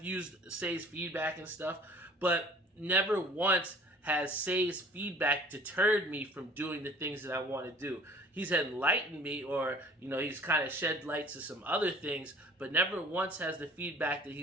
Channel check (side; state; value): both; normal; correlation 0.49